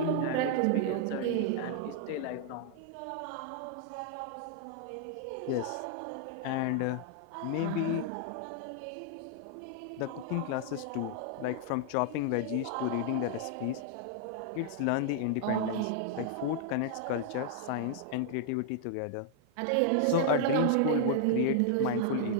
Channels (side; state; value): both; different; correlation 0.00